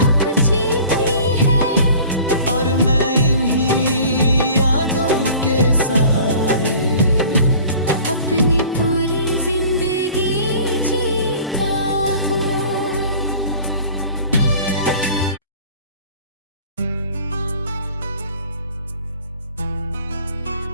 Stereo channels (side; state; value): both; inverted; correlation -0.46